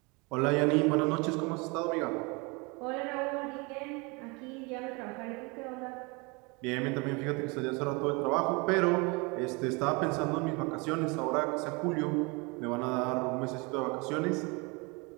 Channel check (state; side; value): quieter; left; 28.4 dB